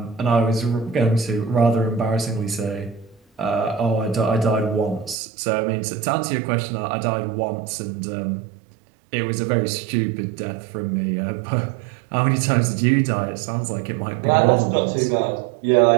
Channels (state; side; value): drops out; left; at 5.2 s